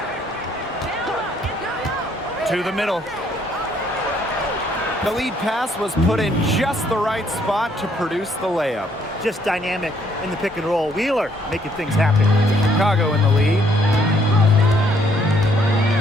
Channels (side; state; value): both; normal; correlation 0.67